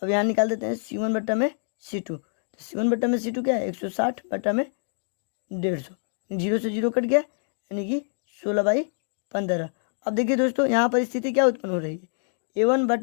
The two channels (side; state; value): right; silent; digital silence